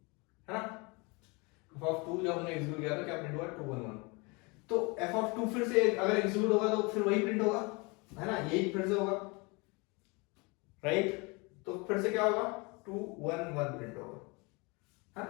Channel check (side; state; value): right; quieter; 28.3 dB